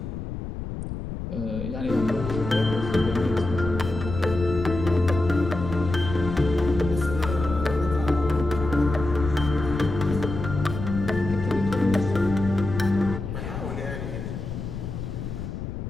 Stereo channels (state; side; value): noise; left; rumble, 6 dB below the sound